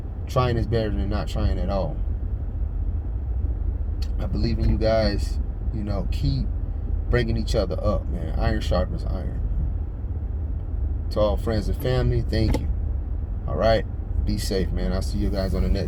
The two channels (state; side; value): identical; both; correlation 1.00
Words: Trying is better than not trying at all. I believe in you guys. Keep bringing each other up, man. Iron sharpens iron. To all friends and family, thank you. All right, be safe, man. I'll see you guys on the